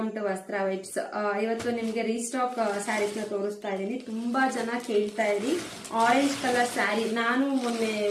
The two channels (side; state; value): both; identical; correlation 1.00